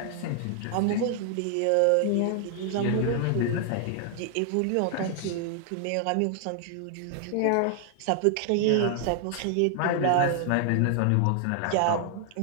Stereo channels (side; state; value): both; different; correlation 0.00